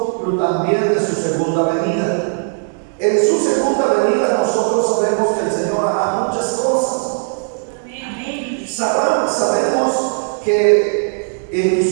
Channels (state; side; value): silent; left; digital silence